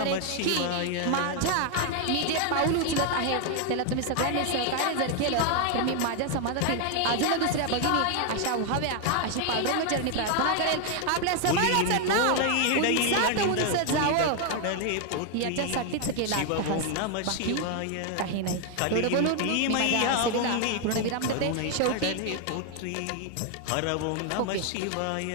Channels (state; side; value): different; both; correlation 0.01